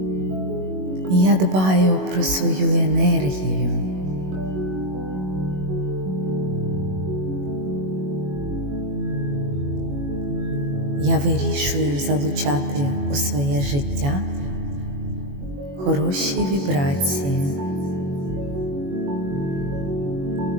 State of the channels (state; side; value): late; left; 21 ms